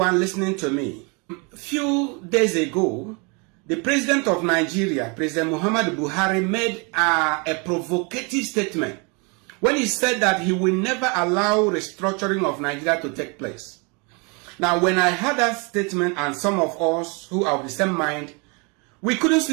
listening to me. A few days ago, the president of Nigeria, President Muhammadu Buhari, made a provocative statement when he said that he will never allow restructuring of Nigeria to take place. Now, when I heard that statement, and some of us who are of the same mind, we couldn't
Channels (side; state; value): left; quieter; 31.8 dB